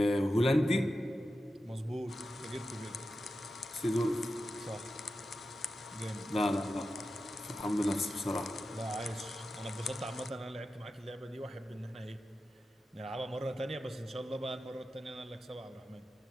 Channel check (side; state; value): both; normal; correlation 0.91